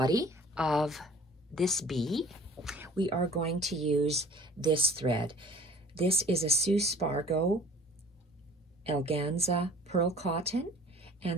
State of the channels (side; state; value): both; normal; correlation 0.49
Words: of this bee, we are going to use this thread. This is a Sue Spargo Elganza Pearl Cotton,